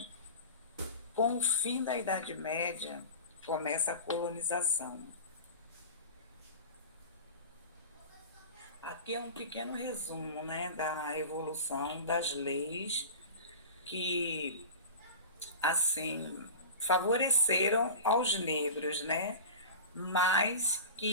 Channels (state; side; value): inverted; both; correlation -0.32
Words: Com o fim da Idade Média, começa a colonização. Aqui é um pequeno resumo, né, da evolução das leis que, assim, favoreceram aos negros, né, mas